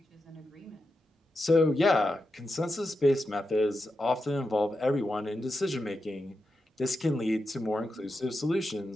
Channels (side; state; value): both; normal; correlation 0.88